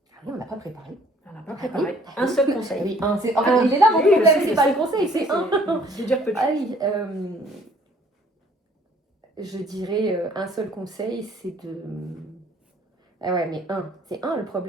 Ah oui, on n'a pas préparé. On n'a pas préparé. Un seul conseil. Oui, il est là mon problème, c'est pas le conseil, c'est un. Je veux dire petit. Ah oui, je dirais un seul conseil, c'est de... Ah ouais, mais c'est un le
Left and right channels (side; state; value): both; normal; correlation 0.58